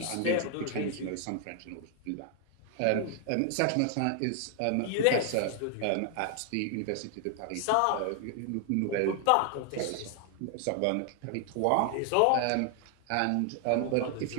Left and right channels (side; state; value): both; different; correlation 0.00